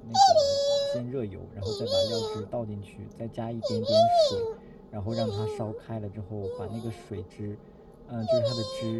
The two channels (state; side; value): identical; both; correlation 1.00